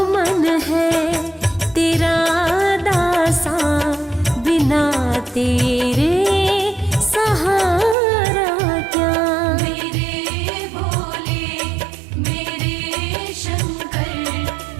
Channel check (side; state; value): left; drops out; at 8.0 s